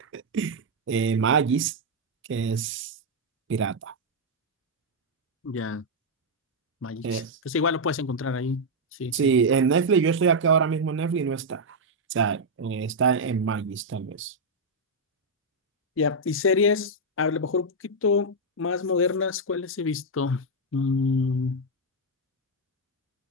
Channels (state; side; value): normal; both; correlation -0.02